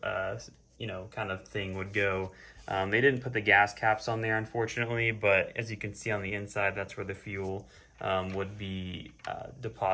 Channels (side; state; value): both; identical; correlation 1.00